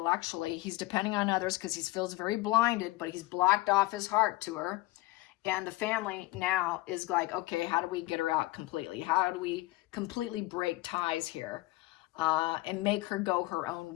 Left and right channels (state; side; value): quieter; right; 19.8 dB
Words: He's depending on others because he feels very blinded, but he's blocked off his heart to her. And the family now is like, okay, how do we get her out completely? How do we completely break ties here and make her go her own